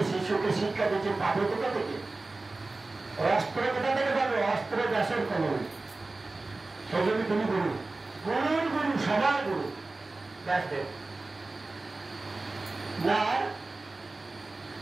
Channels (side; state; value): left; quieter; 3.3 dB